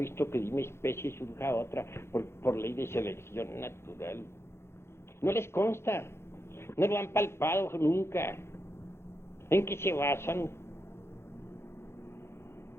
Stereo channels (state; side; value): late; right; 0.12 ms